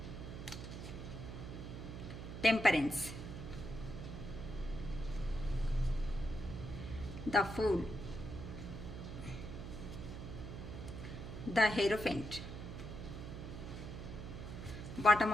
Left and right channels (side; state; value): right; noise; hum, 8 dB below the sound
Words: Temperance, the Fool, the Hierophant. Bottom